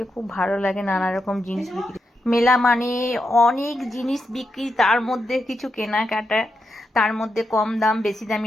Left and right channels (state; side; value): normal; both; correlation 0.86